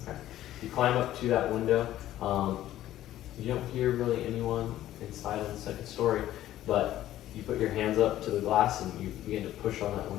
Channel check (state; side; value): quieter; right; 13.5 dB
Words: You climb up to that window. You don't hear really anyone inside on the second story, but you put your hands up to the glass and you begin to push on that